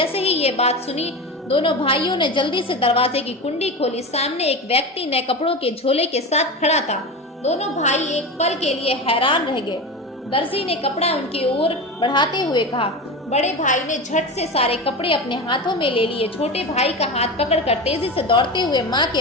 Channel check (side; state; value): both; normal; correlation 0.24